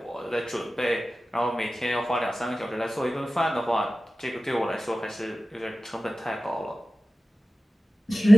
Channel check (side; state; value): both; normal; correlation 0.96